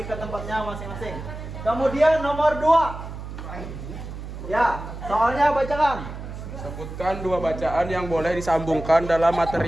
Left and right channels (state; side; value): noise; right; hum, 10 dB below the sound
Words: ke tempatnya masing-masing. Kemudian nomor 2. Ya, soalnya bacakan. Sebutkan dua bacaan yang boleh disambungkan dalam